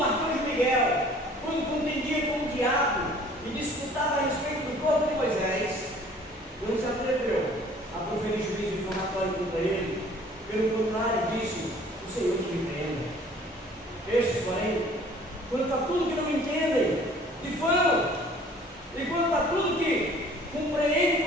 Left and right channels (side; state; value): both; normal; correlation 0.52